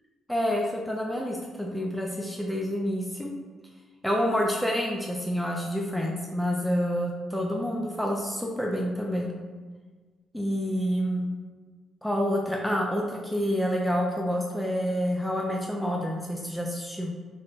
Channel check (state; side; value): normal; both; correlation 0.86